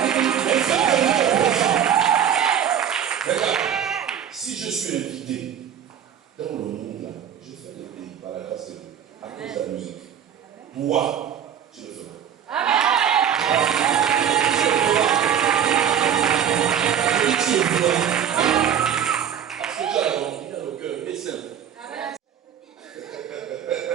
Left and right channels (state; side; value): quieter; left; 8.9 dB